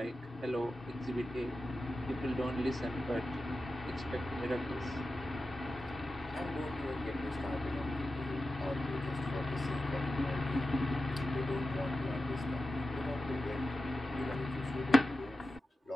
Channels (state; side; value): normal; both; correlation 0.92